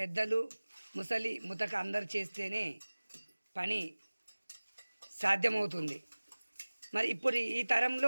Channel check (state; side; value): inverted; both; correlation -1.00